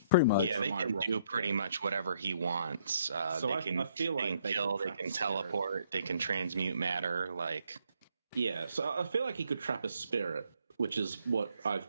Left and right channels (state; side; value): inverted; both; correlation -0.69